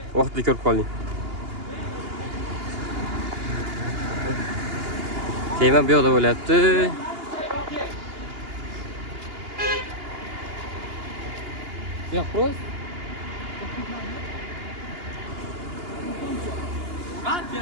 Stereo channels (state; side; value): late; left; 2.8 ms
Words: Vaqtli ko'rib qolding. Kema bu yoqda bo'lyapti. Yo'q, ro'z.